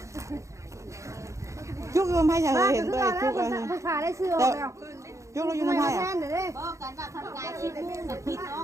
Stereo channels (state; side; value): late; left; 0.15 ms